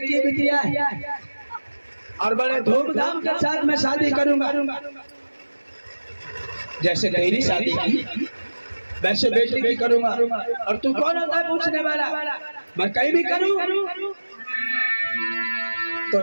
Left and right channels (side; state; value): both; inverted; correlation -1.00